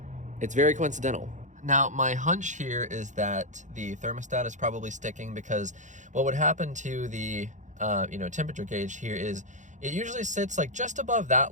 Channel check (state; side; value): late; left; 0.35 ms